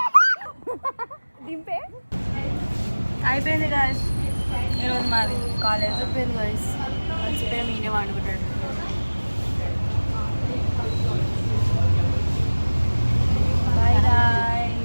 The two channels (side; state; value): both; inverted; correlation -1.00